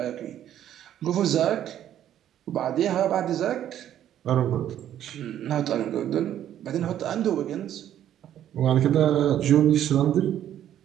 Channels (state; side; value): quieter; left; 11.1 dB